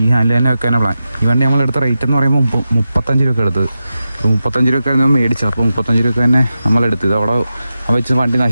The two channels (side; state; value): both; inverted; correlation -0.91